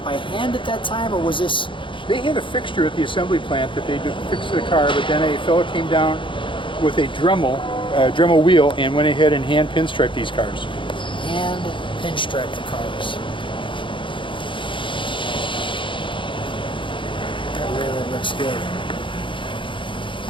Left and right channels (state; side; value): late; right; 0.24 ms